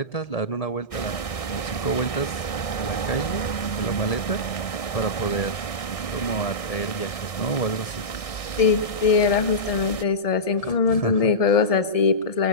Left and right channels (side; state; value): right; late; 1.6 ms